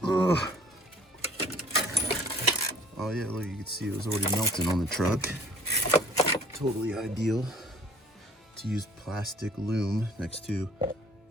Ugh. Oh yeah, look, you can see it was already melting on the truck. Totally ideal to use plastic loom next to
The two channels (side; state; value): both; normal; correlation 0.54